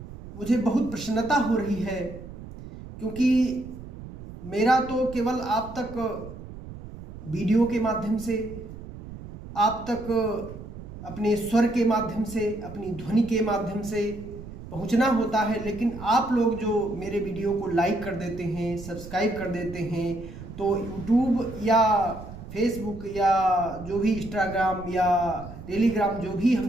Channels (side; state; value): right; noise; rumble, 13 dB below the sound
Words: मुझे बहुत प्रसन्नता हो रही है क्योंकि मेरा तो केवल आप तक वीडियो के माध्यम से, आप तक अपने स्वर के माध्यम से, अपनी ध्वनि के माध्यम से पहुंचना होता है, लेकिन आप लोग जो मेरे वीडियो को लाइक कर देते हैं, सब्सक्राइब कर देते हैं, तो यूट्यूब या फेसबुक या जो भी इंस्टाग्राम या टेलीग्राम जो भी हम